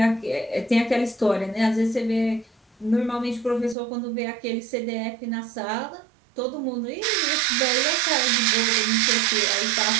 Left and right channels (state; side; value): drops out; left; at 3.8 s